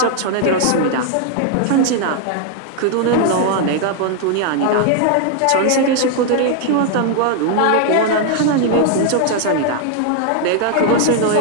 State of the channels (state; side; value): different; both; correlation 0.00